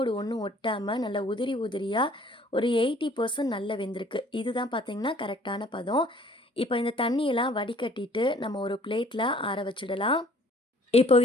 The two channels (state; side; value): normal; both; correlation 0.55